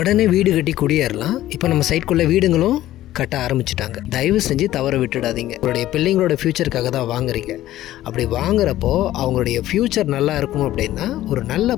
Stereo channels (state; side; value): quieter; right; 14.3 dB